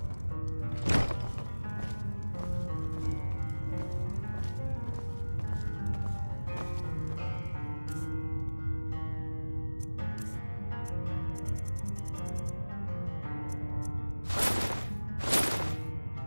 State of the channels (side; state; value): both; inverted; correlation -1.00